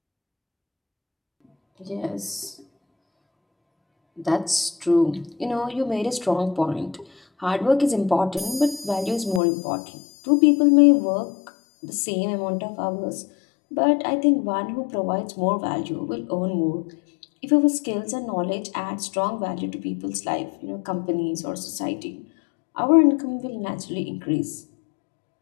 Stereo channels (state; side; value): drops out; right; at 9.4 s